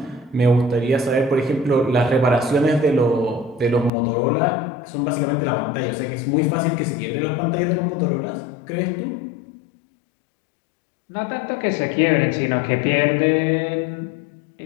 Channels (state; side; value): drops out; right; at 3.9 s